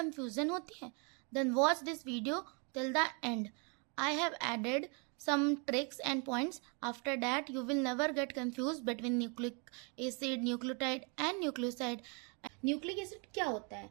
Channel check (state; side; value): quieter; left; 35.1 dB